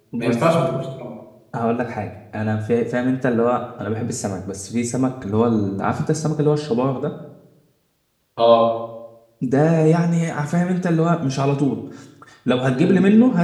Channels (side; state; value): both; identical; correlation 1.00